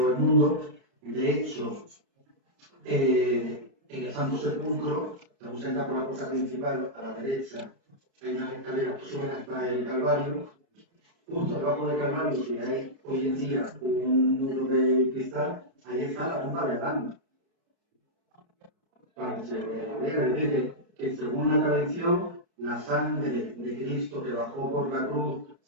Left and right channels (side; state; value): left; late; 29 ms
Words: el mundo. De hecho, en el Santo Sepulcro, según se entra por la puerta principal, a la derecha, hay unas escaleras que suben hasta el Calvario. Justo debajo del Calvario, que hay hoy en día un muro de cristal, ahí está la tumba de Adán. Para que se vea, es decir, que según la tradición, la sangre de Cristo que bajó por la cruz